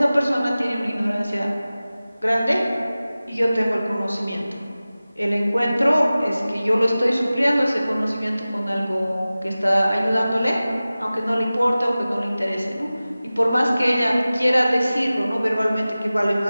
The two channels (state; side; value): inverted; both; correlation -0.97